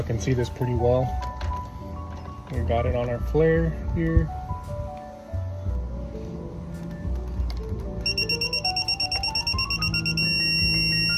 can see this pretty well. We got it on our flare here.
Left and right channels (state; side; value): identical; both; correlation 1.00